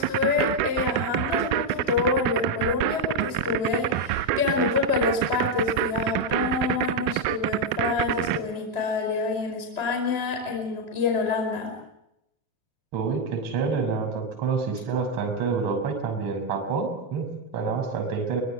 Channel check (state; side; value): late; left; 3.0 ms